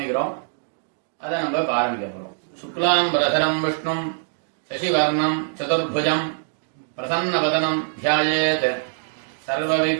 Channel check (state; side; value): silent; left; digital silence